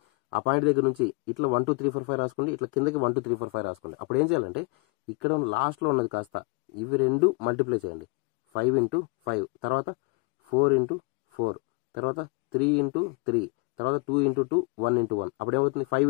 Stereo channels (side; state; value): right; quieter; 31.9 dB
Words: ఆ పాయింట్ దగ్గర నుంచి ఇట్లా 1 2 3 4 5 రాసుకోండి, ఇట్లా కిందకి 1 2 3 4 5 రాసుకోండి. అప్పుడు ఏం చేయాలంటే ఇక్కడ లాస్ట్లో ఉన్నది కాస్త ఇవి రెండు మల్టిప్లై చేయండి. 5 into 5, తర్వాత 4 into 4, తర్వాత 3 into 3, తర్వాత 2 into 2, 1 into 1. అప్పుడు ఏమవుతుంది, 5